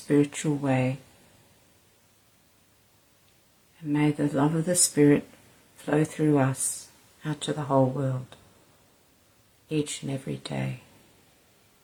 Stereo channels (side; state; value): both; identical; correlation 1.00